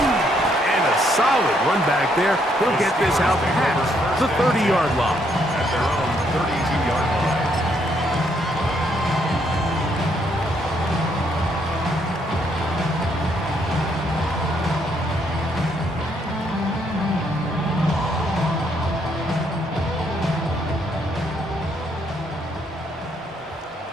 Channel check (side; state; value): both; normal; correlation 0.72